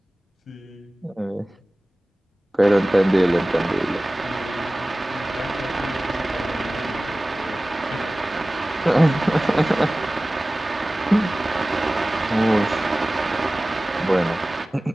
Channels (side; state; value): both; normal; correlation 0.98